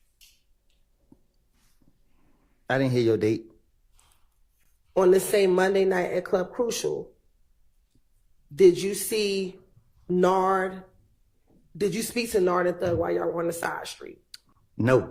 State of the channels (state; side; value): identical; both; correlation 1.00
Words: I didn't hear your date. on this same Monday night at Club Crucial, did you see Nard? Did you speak to Nard and Thug while y'all were on the side street? No.